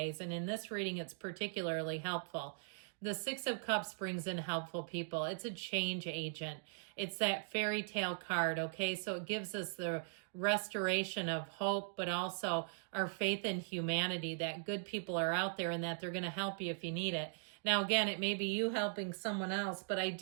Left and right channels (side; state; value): left; silent; digital silence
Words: And in this reading, it's particularly helpful. The Six of Cups brings in helpful people. It's a change agent. It's that fairy tale card, okay? So it gives us the restoration of hope, but also our faith in humanity, that good people are out there and that they're going to help you if you need it. Now, again, it may be you helping someone else, but I